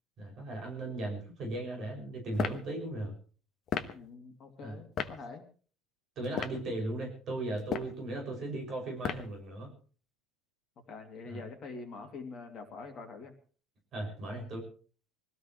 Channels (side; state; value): both; normal; correlation 0.60